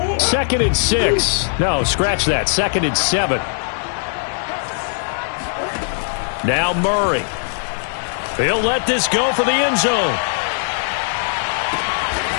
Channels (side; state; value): right; silent; digital silence